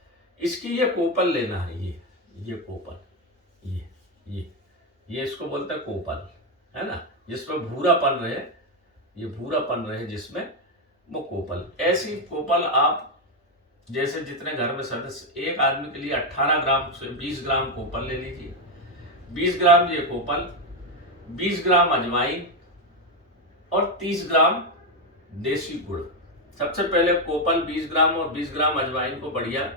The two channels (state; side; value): normal; both; correlation 0.07